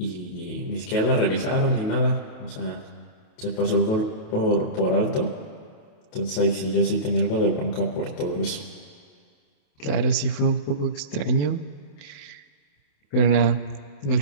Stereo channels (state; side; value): late; right; 27 ms